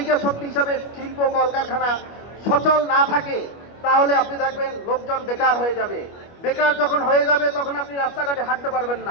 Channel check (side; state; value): right; late; 25 ms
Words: শক্তি হিসাবে শিল্প কলকারখানা সচল না থাকে, তাহলে আপনি দেখবেন লোকজন বেকার হয়ে যাবে। বেকার যখন হয়ে যাবে তখন আপনি রাস্তাঘাটে হাঁটতে পারবেন